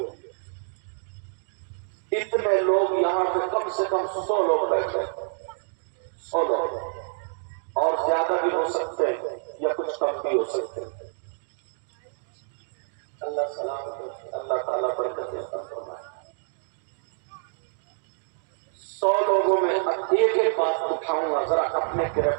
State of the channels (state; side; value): silent; left; digital silence